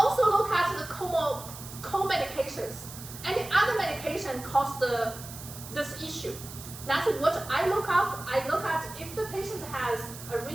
look at the co-medications. Any other medication cause this issue. That's what I look up. I look at if the patient has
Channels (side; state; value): right; noise; hiss, 13 dB below the sound